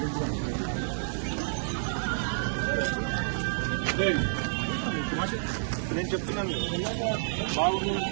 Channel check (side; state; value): left; silent; digital silence